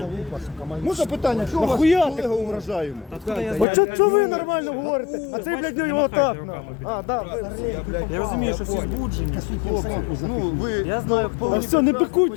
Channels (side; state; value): right; drops out; at 3.7 s